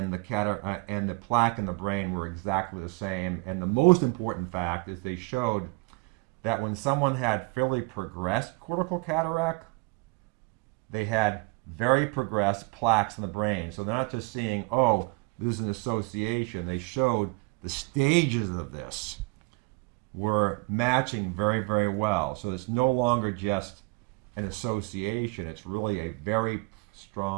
the plaque in the brain were exactly the same. And the most important fact is they showed that when someone had fairly progressed cortical cataract, they had very progressed plaques in the brain. So they're not just seeing, oh, there's an association. They showed the stages of this were matching very, very well. So it's no longer just an association. It's really a very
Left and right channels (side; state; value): left; quieter; 27.5 dB